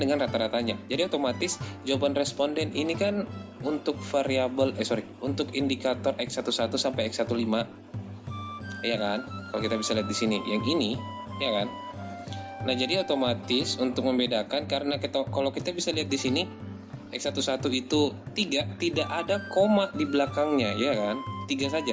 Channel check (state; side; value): identical; both; correlation 1.00